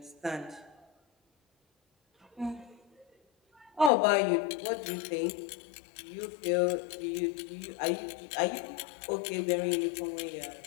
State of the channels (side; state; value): right; drops out; at 3.9 s